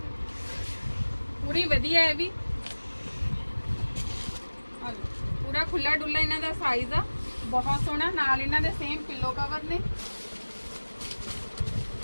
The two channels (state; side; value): inverted; both; correlation -1.00